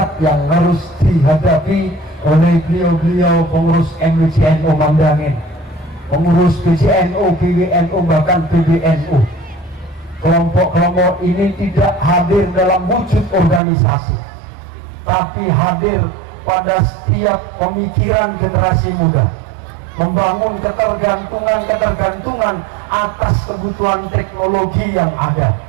yang harus dihadapi oleh beliau-beliau pengurus MWCNU Mandangin, pengurus PJNU, PWNU, bahkan PBNU. Kelompok-kelompok ini tidak hadir dalam wujud organisasi, tapi hadir pada setiap pemikiran generasi muda, membangun ketergantungan atas kebutuhan teknologi yang ada.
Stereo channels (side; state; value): left; drops out; at 13.6 s